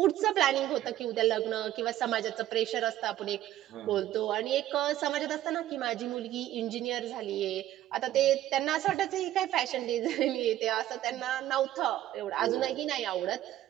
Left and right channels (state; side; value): quieter; left; 13.5 dB